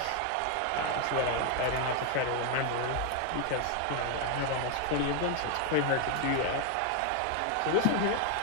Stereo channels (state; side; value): different; both; correlation 0.01